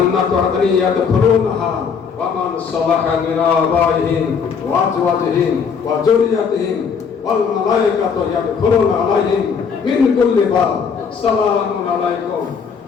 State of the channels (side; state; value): right; quieter; 6.2 dB